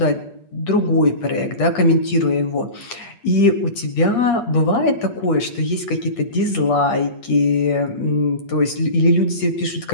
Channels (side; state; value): right; late; 8.5 ms